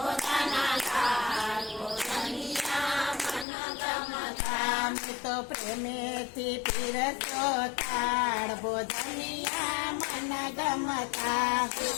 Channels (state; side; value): drops out; right; at 3.5 s